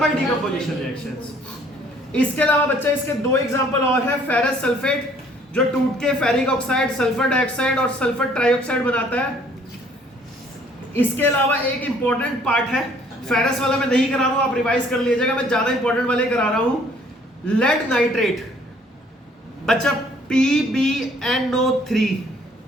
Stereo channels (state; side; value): normal; both; correlation 0.60